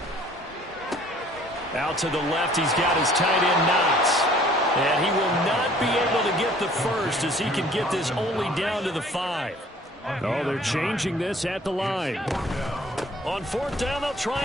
Out to the left, he's got his tight end Knox. And he will not be able to get the first as he can get this only down to the 5. Oh, they're changing this at the line. On 4th down, they'll try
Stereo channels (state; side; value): normal; both; correlation 0.55